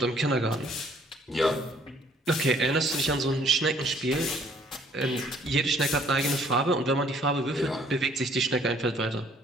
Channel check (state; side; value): normal; both; correlation 0.61